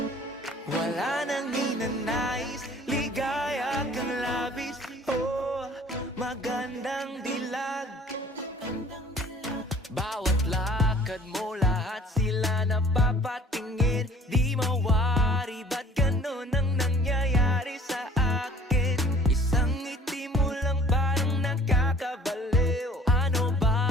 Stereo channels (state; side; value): normal; both; correlation 0.51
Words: Wala nang ninanais, ligaya kang labis. Oh, magandang dilag. Bawat lakad mo, lahat sila napapatingin. Di mawari, ba't ganun ang nangyayari sa akin? Isang ngiti mo lang parang nakakabaliw. Ano